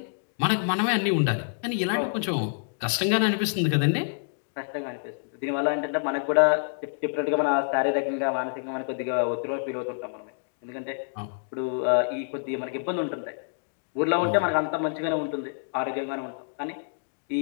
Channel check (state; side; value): silent; right; digital silence